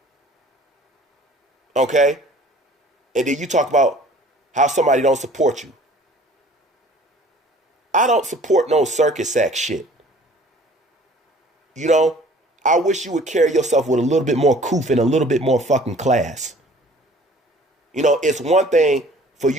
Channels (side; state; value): both; normal; correlation 0.51